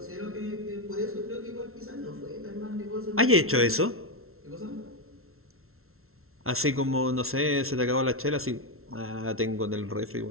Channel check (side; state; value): left; late; 0.62 ms